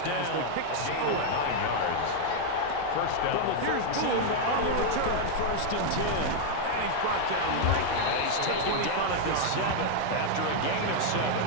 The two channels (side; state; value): both; different; correlation 0.00